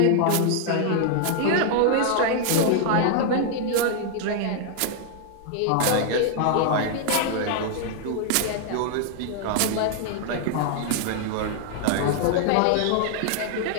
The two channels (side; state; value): both; different; correlation 0.00